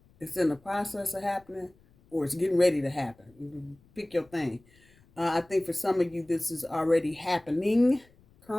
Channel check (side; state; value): left; noise; rumble, 30 dB below the sound